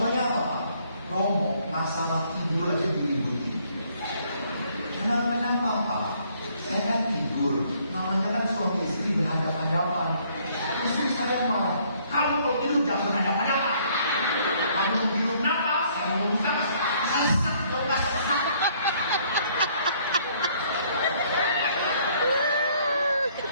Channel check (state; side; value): inverted; both; correlation -0.64